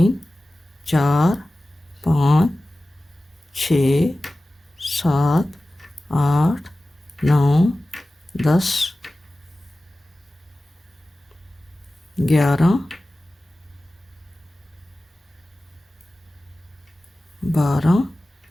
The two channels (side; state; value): both; normal; correlation 0.96